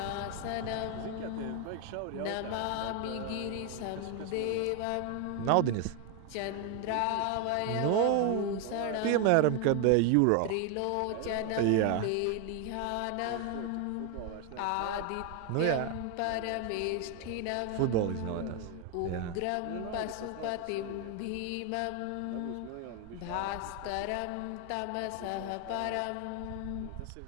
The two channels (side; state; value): both; different; correlation 0.01